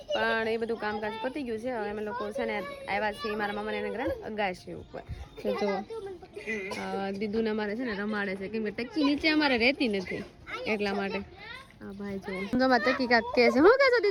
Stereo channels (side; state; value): both; identical; correlation 1.00